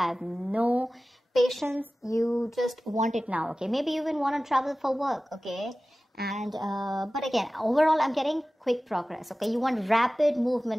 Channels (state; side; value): normal; both; correlation 0.97